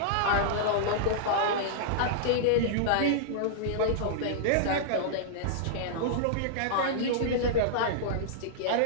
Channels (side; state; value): both; different; correlation -0.02